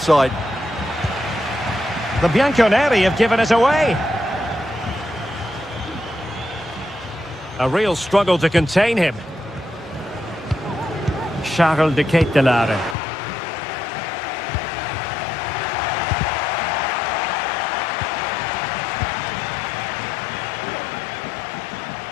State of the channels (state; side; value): drops out; right; at 13.0 s